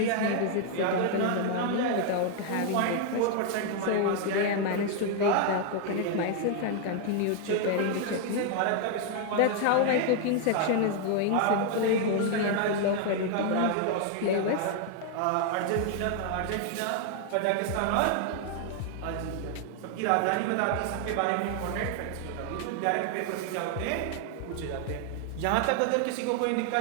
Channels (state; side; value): different; both; correlation 0.00